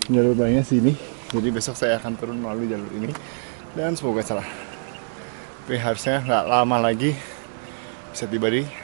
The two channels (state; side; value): silent; left; 61 dB below the other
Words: jalur barunya sini. Jadi besok saya akan turun melalui jalur ini dan semoga salah. Tapi harusnya nggak lama lagi bisa tiba di